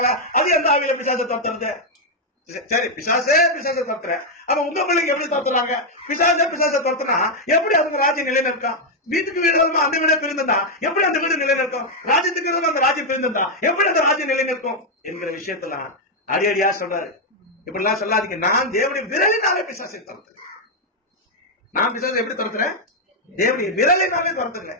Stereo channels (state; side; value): normal; both; correlation 0.00